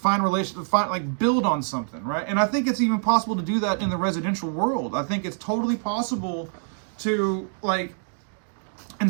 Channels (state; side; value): silent; left; digital silence